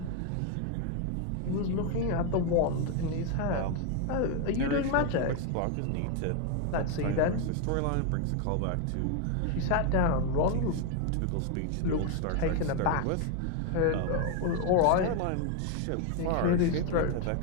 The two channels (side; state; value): both; different; correlation 0.01